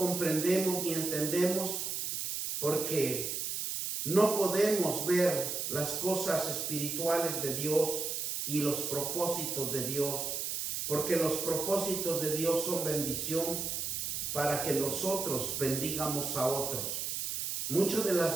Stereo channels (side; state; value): right; noise; hiss, 2 dB below the sound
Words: ni entendemos porque no podemos ver las cosas espirituales de Dios y los propósitos de Dios, porque los propósitos de Dios son bendición para que nosotros bendigamos a otros. Muchas de